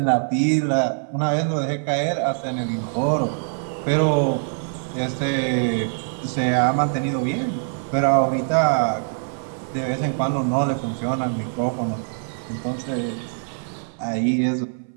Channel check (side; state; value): left; silent; 57 dB below the other